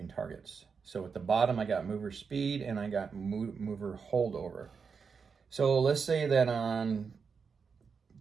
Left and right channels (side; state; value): left; quieter; 5.7 dB